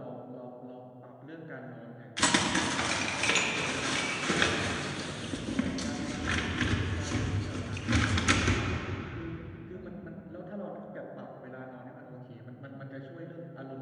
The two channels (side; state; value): both; identical; correlation 1.00